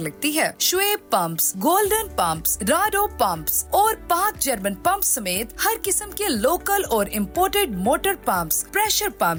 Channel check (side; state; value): both; identical; correlation 1.00